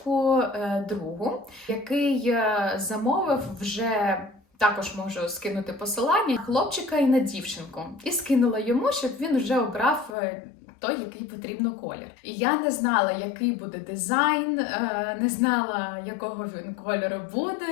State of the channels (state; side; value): drops out; right; at 10.2 s